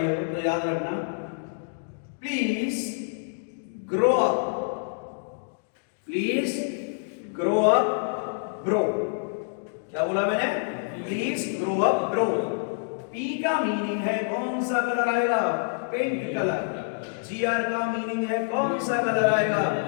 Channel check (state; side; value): silent; right; digital silence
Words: तो याद रखना, please grow up, please grow up bro. क्या बोला मैंने? Please grow up bro. P का मीनिंग है कौन सा कलर आएगा? Pink colour. GR का मीनिंग है कौन सा कलर आएगा?